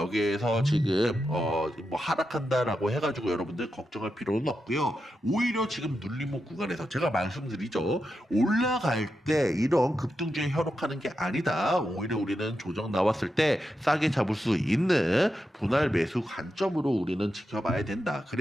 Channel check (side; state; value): both; normal; correlation 0.87